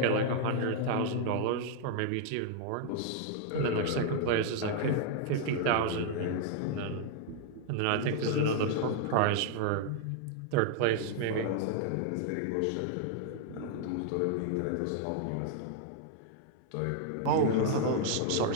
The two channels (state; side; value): different; both; correlation 0.00